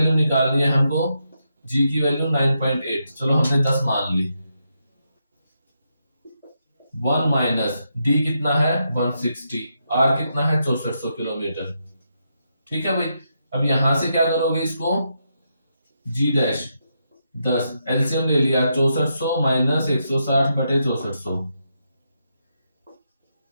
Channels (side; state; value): both; inverted; correlation -0.82